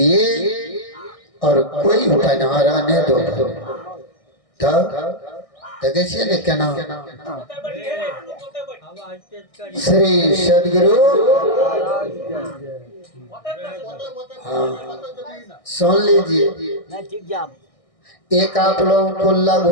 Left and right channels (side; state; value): right; late; 1.6 ms